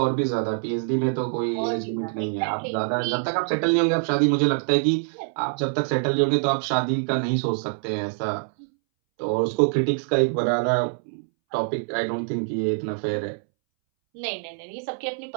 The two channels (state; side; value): silent; left; 62 dB below the other